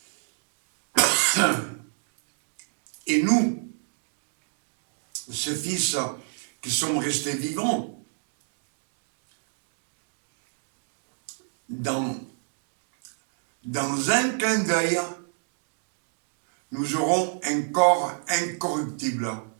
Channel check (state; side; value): silent; left; digital silence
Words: et nous, ces fils qui sommes restés vivants, dans un clin d'œil, nous aurons un corps incorruptible